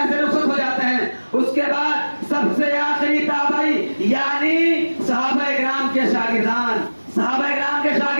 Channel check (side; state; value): both; inverted; correlation -1.00